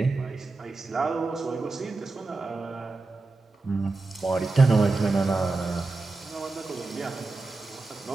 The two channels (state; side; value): quieter; left; 3.5 dB